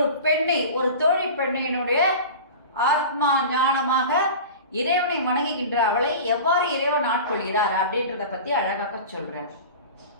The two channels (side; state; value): both; inverted; correlation -0.34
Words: பெண்ணை, ஒரு தோழி பெண்ணினுடைய ஆத்மா ஞானமாக இறைவனை வணங்குகின்ற அவளை எவ்வாறு இறைவன் ஆட்கொள்கிறார் அப்படின்றத பத்தி அழகாக சொல்றேன்.